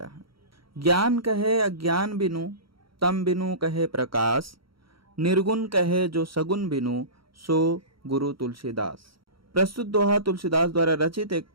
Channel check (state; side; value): late; left; 0.74 ms